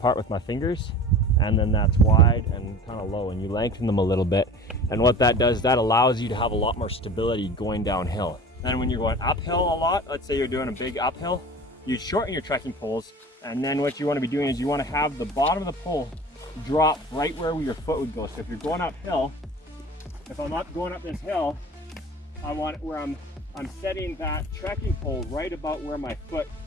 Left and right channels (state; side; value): normal; both; correlation 0.39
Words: part with my fingers, and then that's wide and kind of low, and you lengthen them a little bit. And what that does, that allows you to have a lot more stability going downhill. Then when you're going uphill a lot, let's say you're doing a big uphill, you shorten your trekking poles, and then what you want to be doing is you want to have the bottom of the pole drop right where your foot would go. So if you're going uphill, if I'm up going up this hill, I want it where I'm setting that trekking pole right about where my foot